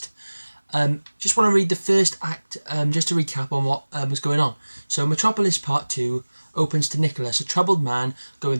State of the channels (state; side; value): inverted; both; correlation -1.00